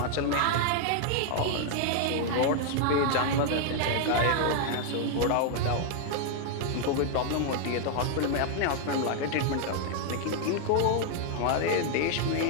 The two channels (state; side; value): different; both; correlation 0.00